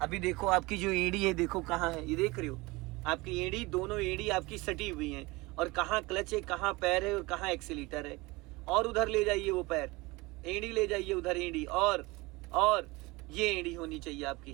अभी देखो आपकी जो एड़ी है, देखो कहाँ है, ये देख रहे हो आपकी एड़ी, दोनों एड़ी आपकी सटी हुई हैं, और कहाँ क्लच है, कहाँ पैर है और कहाँ एक्सीलेटर है। और उधर ले जाइए वो पैर, एड़ी ले जाइए उधर, एड़ी और ये एड़ी होनी चाहिए आपकी।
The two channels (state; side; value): quieter; left; 23.0 dB